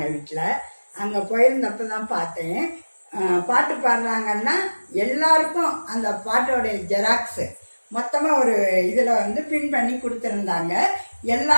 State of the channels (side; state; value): both; inverted; correlation -1.00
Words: வீட்டில். அங்கே போயிருந்தப்போ தான் பார்த்தேன். பாட்டு பாடுறாங்கன்னா எல்லாருக்கும் அந்த பாட்டோடைய ஜெராக்ஸு மொத்தமாக ஒரு இதில் பின் பண்ணி கொடுத்துருந்தாங்க